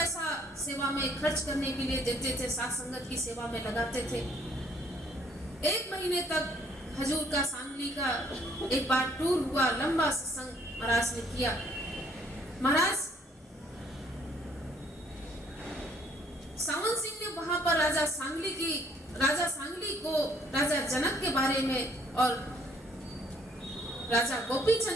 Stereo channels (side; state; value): both; normal; correlation 0.63